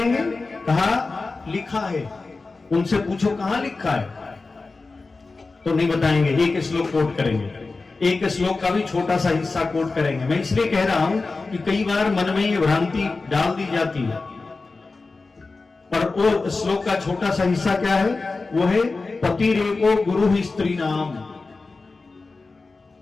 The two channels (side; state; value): right; quieter; 3.8 dB